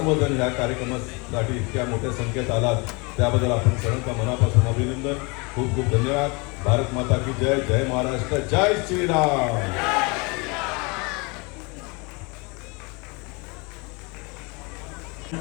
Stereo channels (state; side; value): quieter; right; 29.1 dB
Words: या कार्यक्रमासाठी इतक्या मोठ्या संख्येत आलात त्याबद्दल आपण सर्वांचा मनापासून अभिनंदन. खूप खूप धन्यवाद. भारत माता की जय. जय महाराष्ट्र. जय श्रीराम.